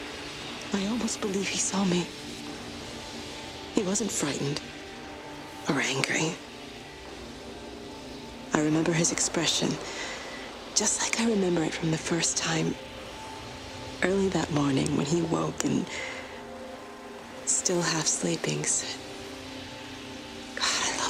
I almost believe he saw me. He wasn't frightened or angry. I remember his expression, just like I remember it from the first time, early that morning when he woke and, still half sleeping, said, "God, I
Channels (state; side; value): identical; both; correlation 1.00